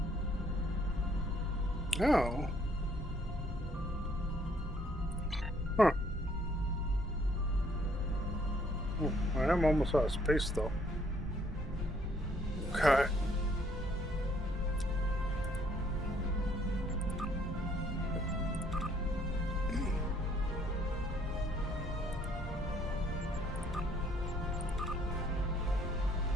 Oh. Huh. Oh, I am almost out of space, though. Okay.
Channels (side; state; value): both; normal; correlation 0.65